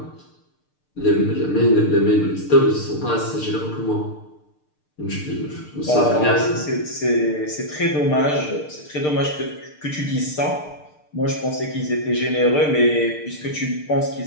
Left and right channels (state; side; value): late; right; 6.6 ms